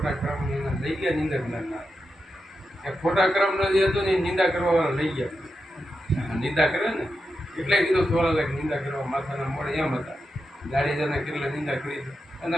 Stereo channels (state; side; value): normal; both; correlation 0.88